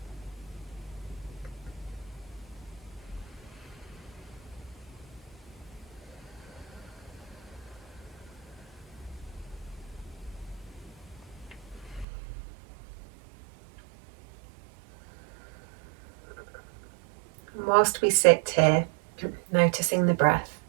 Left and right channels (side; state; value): left; drops out; at 12.1 s